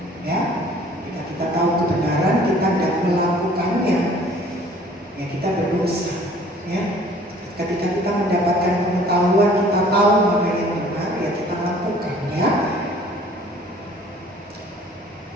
ya. Kita tahu kebenaran, kita tidak melakukannya, ya kita berdosa, ya. Ketika kita mendapatkan pengetahuan, kita tahu mana yang benar, ya kita lakukan, ya.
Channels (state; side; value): normal; both; correlation 0.53